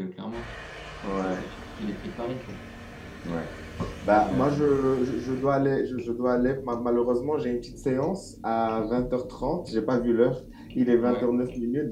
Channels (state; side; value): identical; both; correlation 1.00